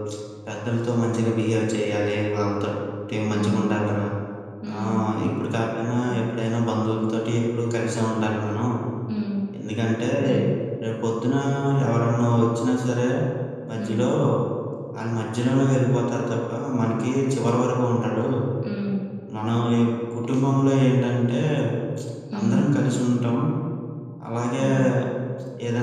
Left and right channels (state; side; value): identical; both; correlation 1.00